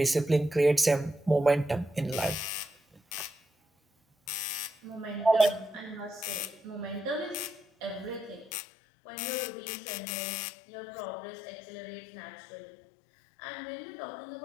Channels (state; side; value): drops out; right; at 8.6 s